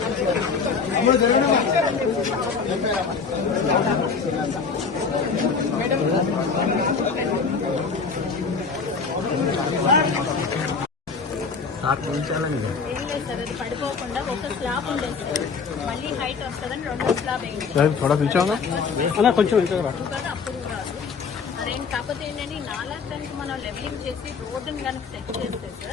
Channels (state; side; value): quieter; right; 5.3 dB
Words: పడిపోకుండా ఒక స్లాబ్ ఉండేది సార్, మళ్ళీ హైట్ వస్తుందని రెండో స్లాబ్ వేయండి. కొంచెం అప్పుడు రాదు అదేంటి. కాకపోతే ఏంటంటే నాలాగడానికి మనం లెవెలింగ్ చేసి రోడ్డుని కనుక సెట్ చేస్తే